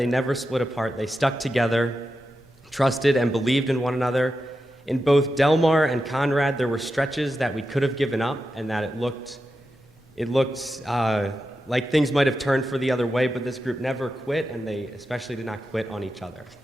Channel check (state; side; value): normal; both; correlation 0.89